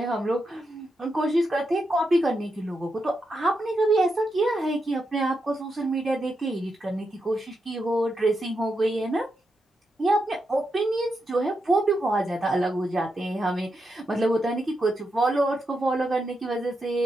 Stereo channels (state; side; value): normal; both; correlation 0.85